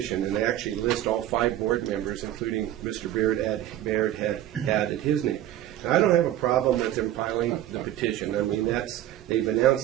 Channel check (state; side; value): quieter; left; 12.7 dB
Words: and they actually list all 5 board members, including Mr. Baird had added his name. Now, I don't have a problem with them filing the petition. I mean, they've